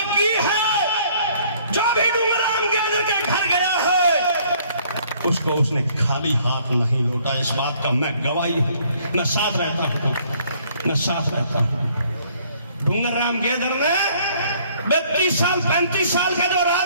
की है। जो भी डूंगरराम गेदर के घर गया है उसको उसने खाली हाथ नहीं लौटा। इस बात का मैं गवाही हूं, मैं साथ रहता हूं, मैं साथ रहता हूं। डूंगरराम गेदर ने 32 साल 35 साल का जो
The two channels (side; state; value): both; inverted; correlation -0.61